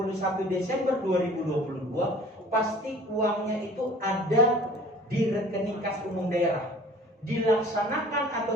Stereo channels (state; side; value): normal; both; correlation 0.48